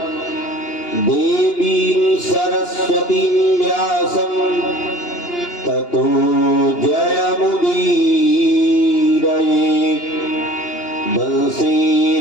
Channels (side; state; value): right; late; 2.8 ms